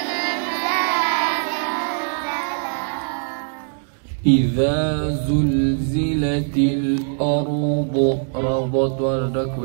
إذا زلزلت الأرض ربط وردك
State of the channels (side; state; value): left; silent; digital silence